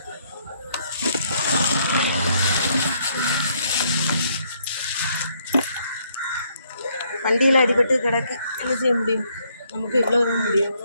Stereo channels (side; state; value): both; inverted; correlation -0.70